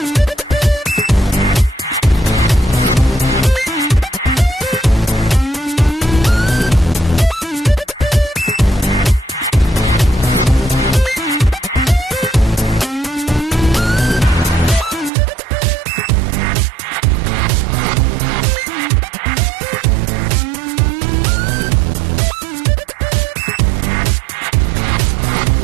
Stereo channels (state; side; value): drops out; left; at 15.1 s